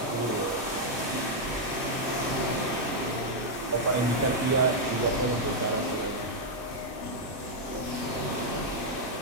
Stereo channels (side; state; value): both; normal; correlation -0.03